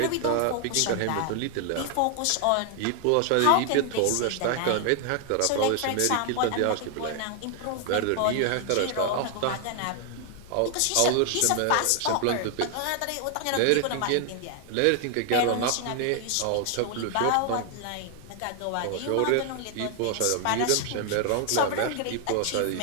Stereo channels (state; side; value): different; both; correlation 0.00